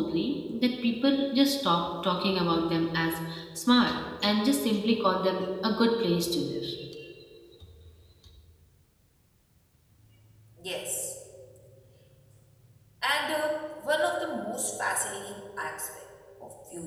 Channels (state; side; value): identical; both; correlation 1.00